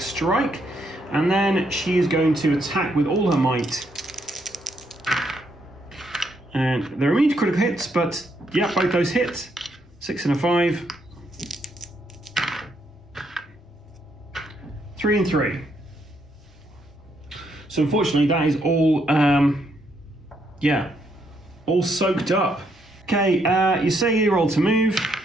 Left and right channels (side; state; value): both; normal; correlation 0.75